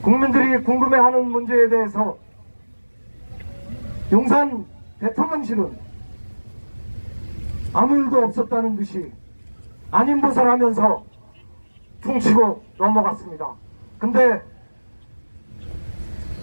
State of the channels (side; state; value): both; inverted; correlation -1.00